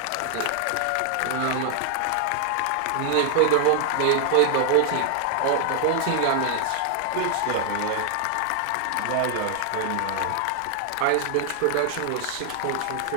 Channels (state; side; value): different; both; correlation 0.00